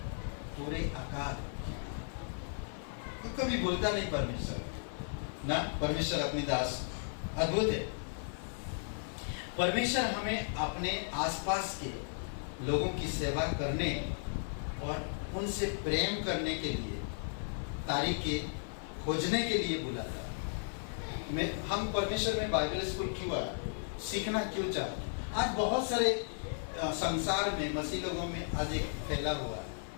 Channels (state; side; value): silent; right; 54 dB below the other